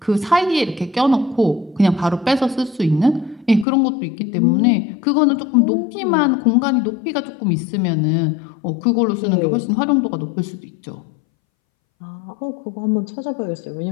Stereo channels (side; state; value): right; drops out; at 3.7 s